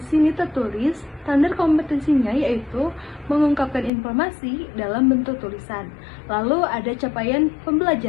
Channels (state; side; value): drops out; right; at 3.9 s